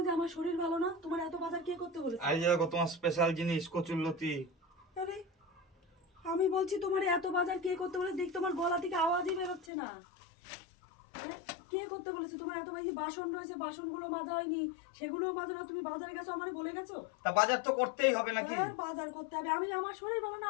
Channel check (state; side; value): drops out; right; at 9.7 s